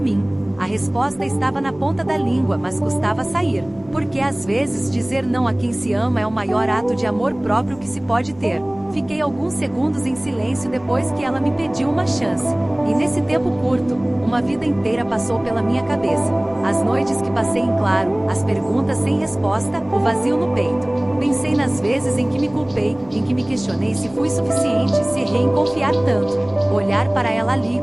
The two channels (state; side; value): noise; left; hum, 24 dB below the sound